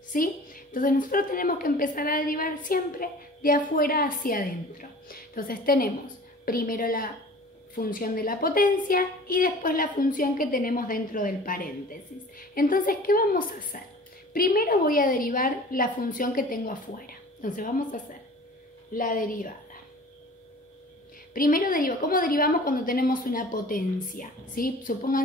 ¿sí? Entonces nosotros tenemos que empezar a derivar siempre de afuera hacia adentro. Entonces tenemos primero la función de la potencia y después la función que tenemos dentro del paréntesis. Entonces, ¿qué vamos a hacer? Primero voy a derivar la función que tengo afuera. Entonces vamos a hacer la derivada. Primero ¿cómo derivamos cuando tenemos una potencia? ¿Sí?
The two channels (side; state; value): both; normal; correlation 0.43